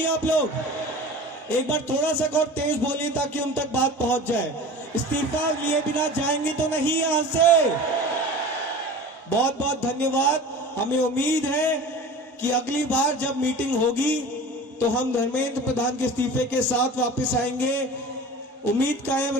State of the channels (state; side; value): normal; both; correlation 0.37